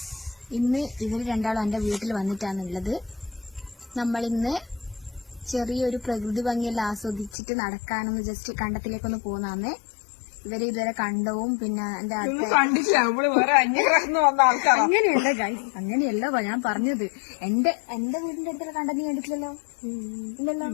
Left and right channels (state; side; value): drops out; right; at 7.3 s